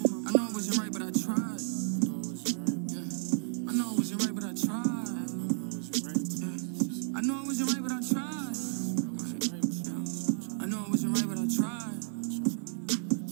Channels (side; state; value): left; silent; 56 dB below the other